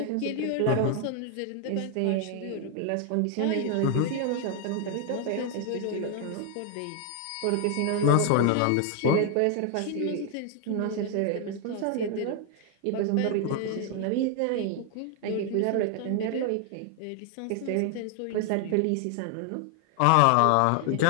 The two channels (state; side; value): different; both; correlation 0.00